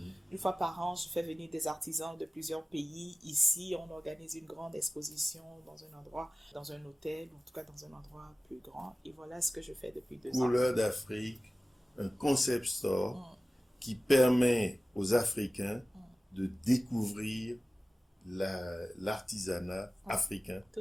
une fois par an, je fais venir des artisans de plusieurs pays. Ici, on organise une grande exposition dans un endroit, dans un hôtel, ou en tout cas dans un endroit plus grand. Et voilà ce que je fais depuis 2 ans. Couleurs d'Afrique, un concept store qui permet aux Africains de découvrir l'artisanat africain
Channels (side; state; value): both; normal; correlation 0.97